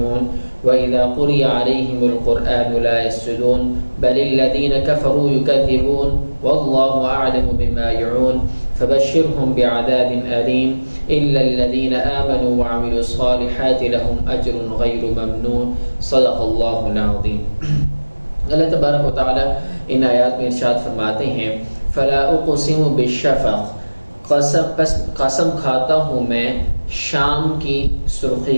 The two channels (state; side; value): inverted; both; correlation -1.00